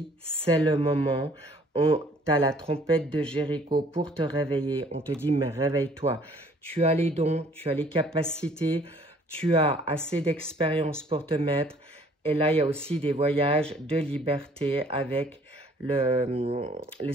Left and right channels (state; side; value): normal; both; correlation 0.58